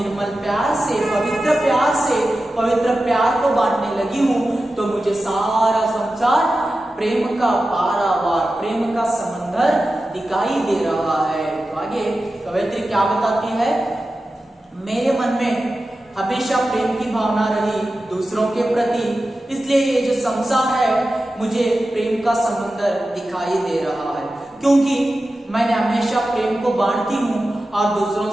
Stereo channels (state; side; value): normal; both; correlation 0.93